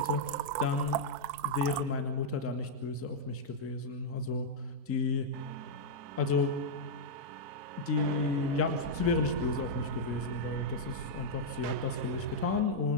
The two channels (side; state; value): left; late; 4.6 ms